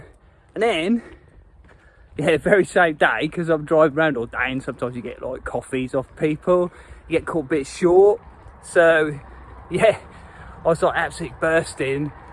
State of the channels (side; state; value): both; identical; correlation 1.00